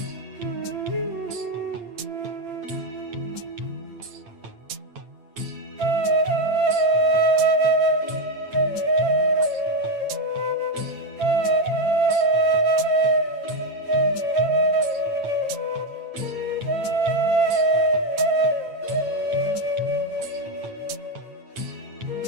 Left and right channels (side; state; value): left; late; 8.9 ms